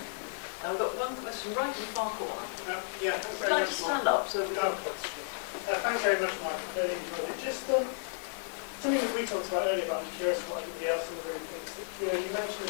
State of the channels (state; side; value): silent; right; digital silence